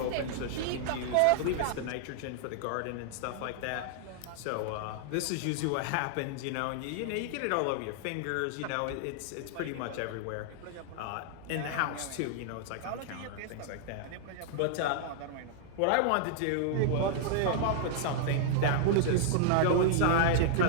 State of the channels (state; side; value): different; both; correlation -0.01